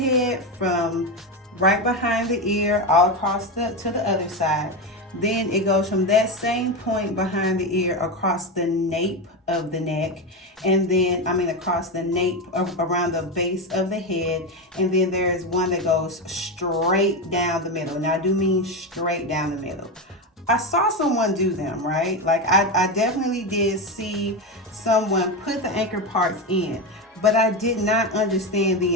from right behind the ear all across to the other side. Then it goes from that same point behind the ear across the nape of the neck, and then across the nape around the base of the head. And then there is one that goes straight down the middle. Now I do mean straight down the middle. I saw someone do them, right? Like I definitely did see someone put the anchor parts in, but I did not understand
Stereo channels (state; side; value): normal; both; correlation 0.14